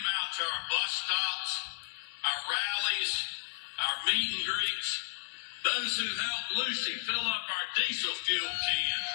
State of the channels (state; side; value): silent; right; digital silence